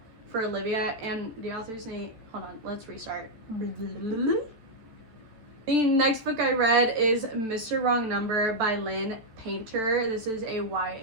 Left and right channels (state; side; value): late; left; 14 ms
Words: for Olivia, and the author's name, hold on, let's restart. The next book I read is Mr. Wrong Number by Lynn Painter. This is a